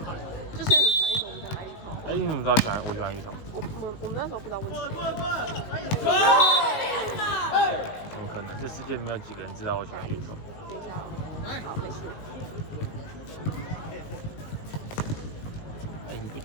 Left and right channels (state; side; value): late; right; 19 ms